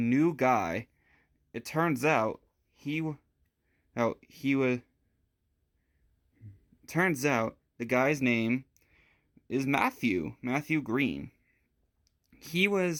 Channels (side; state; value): both; identical; correlation 1.00